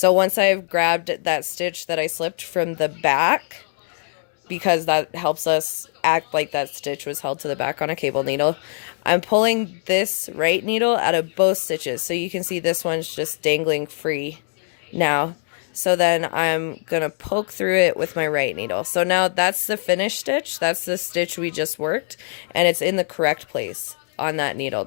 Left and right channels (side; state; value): right; silent; 59 dB below the other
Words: once I've grabbed that stitch that I slipped from the back, because that helps us act like that stitch was held to the back on a cable needle, I'm pulling this right needle out of both stitches. So you can see this one's just dangling free now. So then I'm going to poke through it with my right needle. So now that's the finished stitch. That's the stitch we just worked, and it's in the correct place on that needle